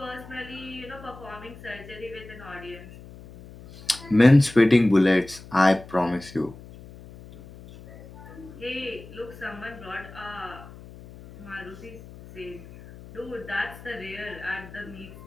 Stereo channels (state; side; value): noise; left; hum, 18 dB below the sound